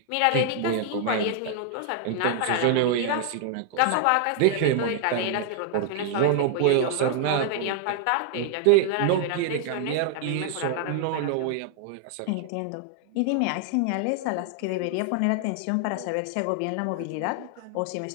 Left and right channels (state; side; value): different; both; correlation 0.00